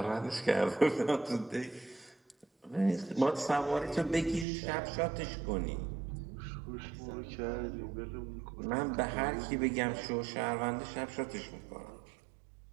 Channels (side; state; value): left; drops out; at 4.5 s